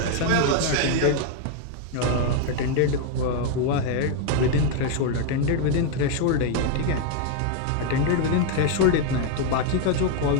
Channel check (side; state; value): both; different; correlation 0.00